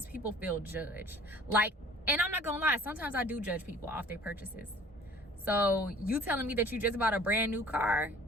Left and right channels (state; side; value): normal; both; correlation 0.50